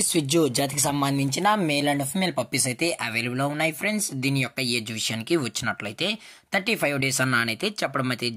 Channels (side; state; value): both; identical; correlation 1.00